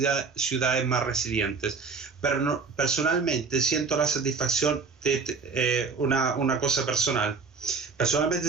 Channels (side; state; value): left; quieter; 4.9 dB